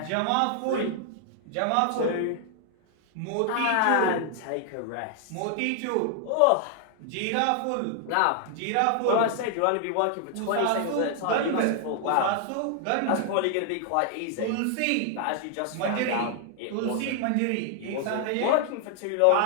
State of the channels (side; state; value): both; different; correlation 0.00